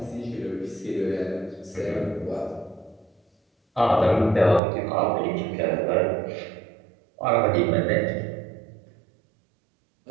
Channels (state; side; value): drops out; left; at 4.6 s